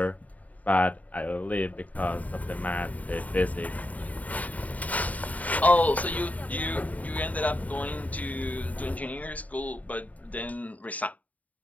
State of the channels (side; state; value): right; late; 0.072 ms